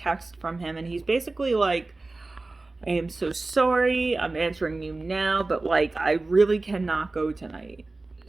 from him, and he's basically like, I am so sorry, I'm answering you now, but like, I really cannot go tonight.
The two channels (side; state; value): left; quieter; 3.3 dB